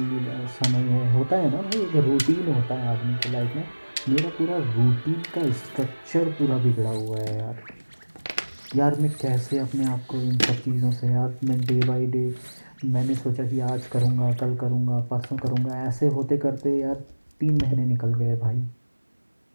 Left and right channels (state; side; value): inverted; both; correlation -1.00